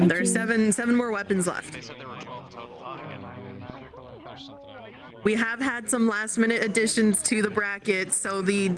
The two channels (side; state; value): both; identical; correlation 1.00